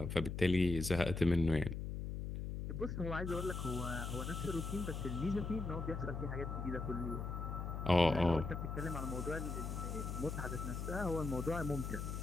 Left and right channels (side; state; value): left; noise; hum, 4 dB below the sound